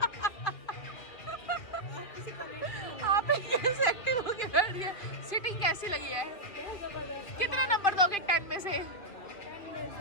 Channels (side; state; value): right; late; 2.5 ms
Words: ही कैसे एक्टिव होके बैठ गए? सीटिंग कैसी लगी है? कितना नंबर दोगे 10 में से?